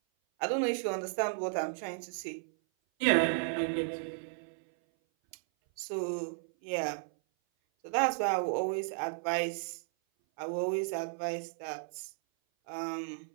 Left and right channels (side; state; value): left; silent; 55 dB below the other